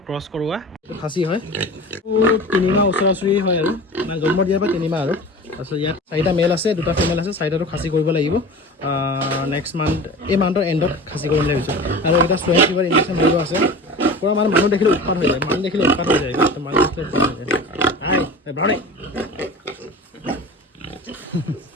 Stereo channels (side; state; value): both; normal; correlation 0.35